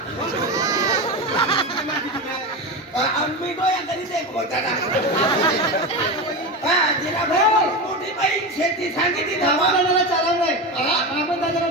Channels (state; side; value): normal; both; correlation 0.20